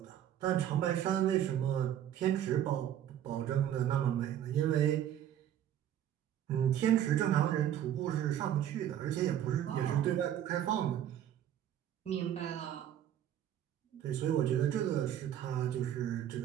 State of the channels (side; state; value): left; quieter; 10.7 dB